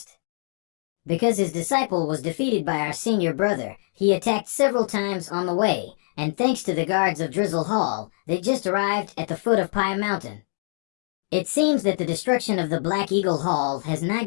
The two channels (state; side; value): silent; right; 62 dB below the other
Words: Because his disciple was defeated by our senior brother, he attacked several times on the way, and thanks to the guards of Drizzle Hall, they just arrived at the foot of Pai Mountain. It seems that the destruction of the Black Eagle Hall has